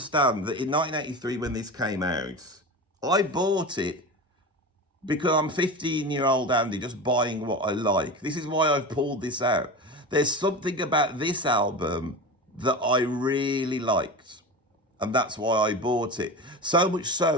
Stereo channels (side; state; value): both; normal; correlation 0.27